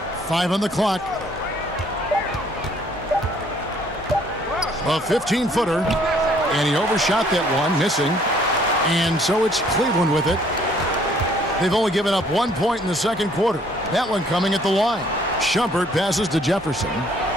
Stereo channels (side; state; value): both; normal; correlation 0.61